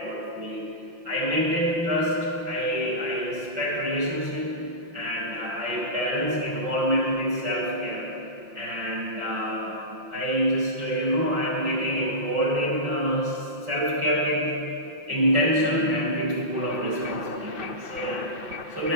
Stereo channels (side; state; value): left; late; 5.8 ms